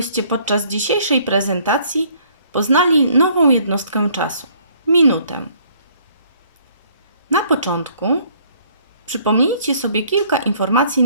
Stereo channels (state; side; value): inverted; both; correlation -0.61